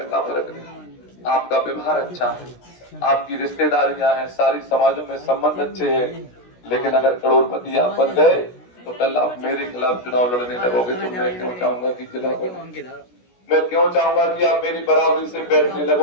क्या फर्क नहीं? आपका व्यवहार अच्छा है, आपकी रिश्तेदारियां हैं, सारी समाजों में संबंध अच्छे हैं, लेकिन अगर करोड़पति आप बन गए तो कल आप मेरे खिलाफ चुनाव लड़ने लगोगे तो मैं क्यों चाहूंगा कि जिला बने? मैं क्यों चाहूंगा कि आप मेरी बराबरी से बैठने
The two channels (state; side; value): late; right; 16 ms